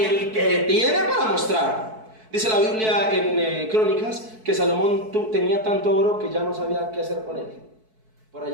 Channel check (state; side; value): late; left; 4.6 ms